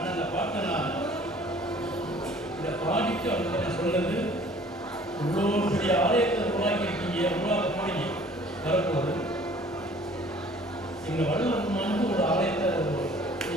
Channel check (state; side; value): normal; both; correlation 0.52